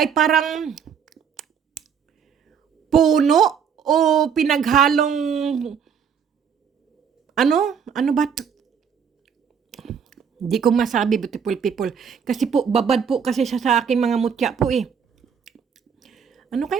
parang puno o pinaghalong, ano ba? Hindi ko masabi, beautiful people. Kasi po, babad po kasi siya sa aking mga mutya po eh. Ano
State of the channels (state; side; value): quieter; left; 7.1 dB